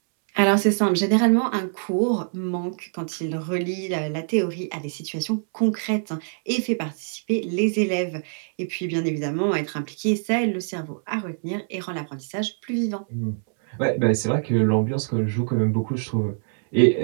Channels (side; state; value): left; silent; 62 dB below the other